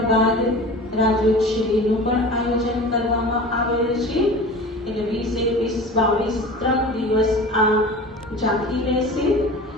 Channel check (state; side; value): normal; both; correlation 0.37